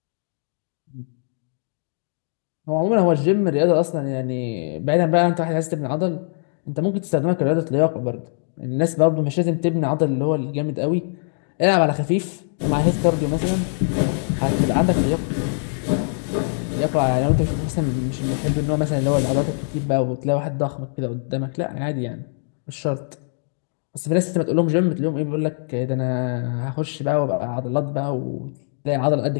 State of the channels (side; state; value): right; silent; digital silence